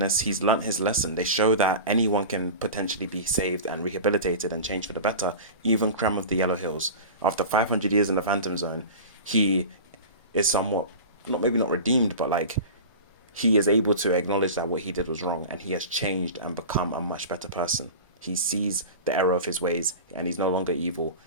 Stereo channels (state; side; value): inverted; both; correlation -0.33